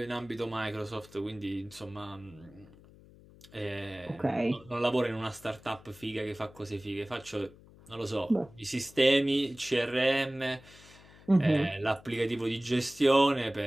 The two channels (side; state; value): left; noise; hum, 23 dB below the sound